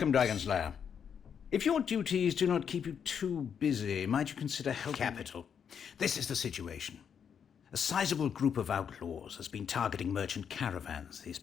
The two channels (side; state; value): right; quieter; 7.5 dB